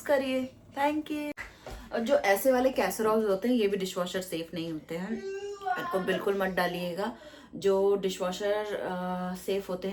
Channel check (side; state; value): both; identical; correlation 1.00